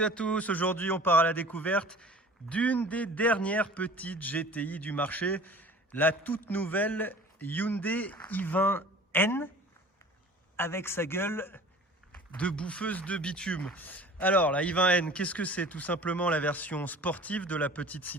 à tous, aujourd'hui on part à la découverte d'une des dernières petites GTI du marché, la toute nouvelle Hyundai i20N avec sa gueule de bouffeuse de bitume. Alors la i20N, qu'est-ce que c'est? Tout simplement la version sportive de la petite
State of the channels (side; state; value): both; normal; correlation 0.45